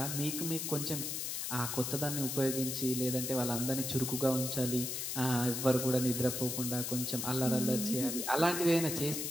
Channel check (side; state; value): left; noise; hiss, 3 dB below the sound